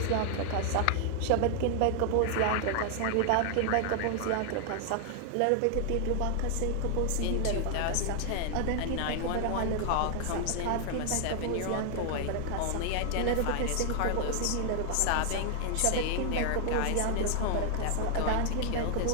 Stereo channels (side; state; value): both; different; correlation 0.00